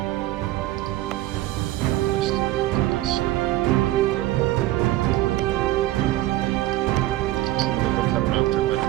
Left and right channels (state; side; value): quieter; left; 16.1 dB